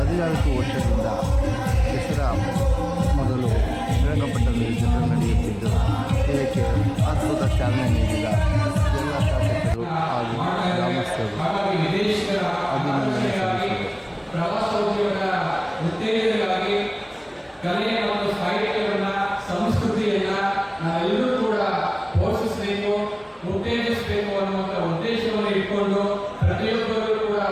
ವರ್ಷದಿಂದ ದಸರಾ ಮೊದಲು ಶ್ರೀರಂಗಪಟ್ಟಣದಲ್ಲಿ ದಸರಾ ನಡೆಯುತ್ತಿದ್ದು, ಇದಕ್ಕೆ ಅದ್ಭುತ ಚಾಲನೆ ನೀಡಿದ ಎಲ್ಲ ಶಾಸಕರು ಹಾಗೂ ಗ್ರಾಮಸ್ಥರು ಅಭಿನಂದನೆ ಸಲ್ಲಿಸಿದರು. ಪ್ರವಾಸೋದ್ಯಮದ ಉತ್ತೇಜನವಾಗಿ ಕಲೆ ಮತ್ತು ಸಾಹಿತ್ಯವನ್ನು, ಸಂಸ್ಕೃತಿಯನ್ನು ನಾವೆಲ್ಲರೂ ಕೂಡ ಪೋಷಿಸಬೇಕು, ಉತ್ತೇಜಿಸಬೇಕು ಅನ್ನುವಂಥ ಉದ್ದೇಶವನ್ನು ಇಟ್ಕೊಂಡು ಪ್ರತಿಯೊಬ್ಬರೂ ಕೂಡ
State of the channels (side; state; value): both; identical; correlation 1.00